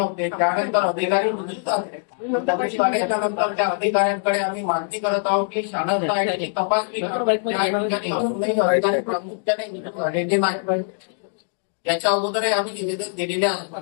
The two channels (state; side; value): silent; right; digital silence